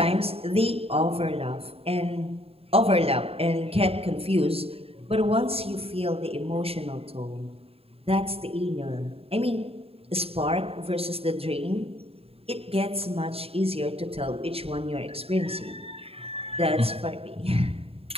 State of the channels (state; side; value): late; left; 0.28 ms